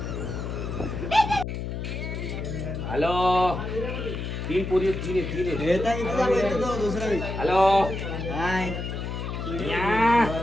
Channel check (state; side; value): noise; left; hum, 5 dB below the sound